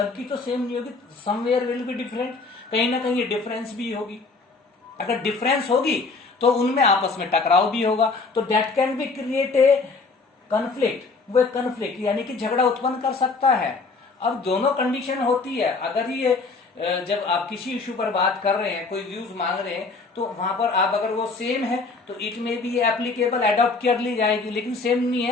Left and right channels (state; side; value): quieter; right; 4.1 dB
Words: तो सेम नहीं होगी, समवेयर विल बी डिफरेंट, कहीं ना कहीं डिफरेंस भी होगी। अगर डिफरेंस होगी तो उनमें आपस में टकराव भी होगा, तो that can be create a conflict, वो कन्फ्लिक्ट यानी कि झगड़ा उत्पन्न कर सकता है। अब दोनों कंडीशन होती है। अगर ये जब आप किसी इशू पर बात कर रहे हैं, कोई व्यूज मांग रहे हैं, तो वहां पर आप अगर वो सेम है तो इट में भी एप्लीकेबल एडॉप्ट कर ली जाएगी, लेकिन सेम नहीं